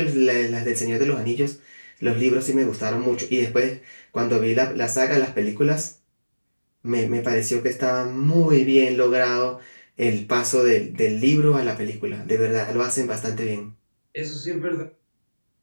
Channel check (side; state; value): both; inverted; correlation -1.00